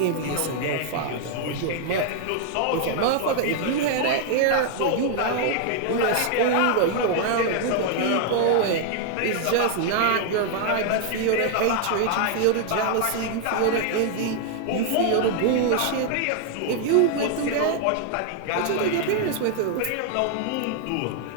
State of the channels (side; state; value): both; different; correlation 0.00